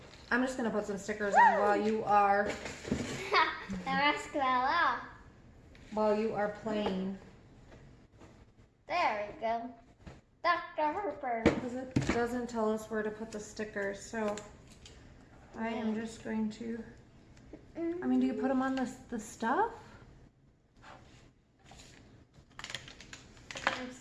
I'm just gonna put some stickers on while you are The rest fell off. playing. There we go. Dr. Harper. Because it doesn't tell us where to put the stickers, so I am just going to. I mean, do you put them on the stuff? I'm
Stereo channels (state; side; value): identical; both; correlation 1.00